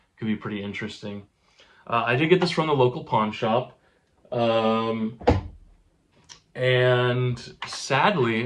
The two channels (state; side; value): identical; both; correlation 1.00